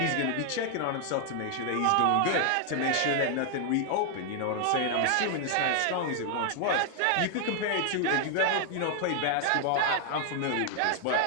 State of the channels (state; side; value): different; both; correlation 0.00